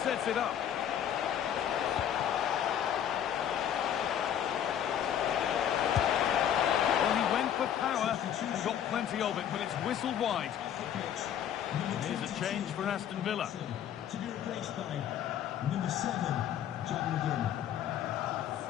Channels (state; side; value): quieter; right; 9.8 dB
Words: sets it up. Well, he went for power and got plenty of it, but it's whistled wide. Here's a change for Aston Villa. To be replaced by number 7, John McGinn.